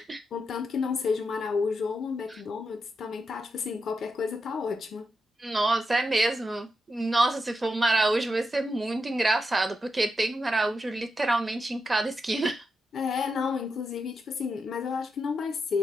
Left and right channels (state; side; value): normal; both; correlation 0.86